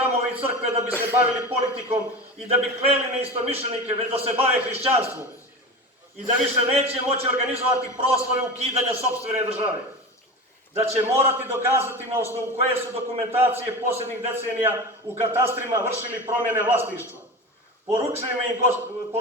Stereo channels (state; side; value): normal; both; correlation 0.28